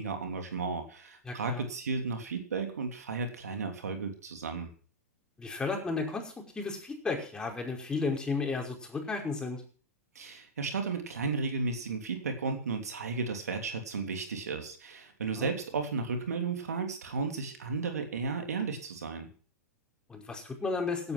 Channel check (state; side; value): normal; both; correlation -0.13